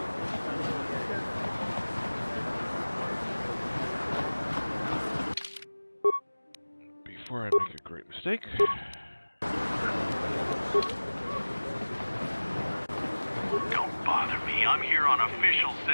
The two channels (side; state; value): both; inverted; correlation -1.00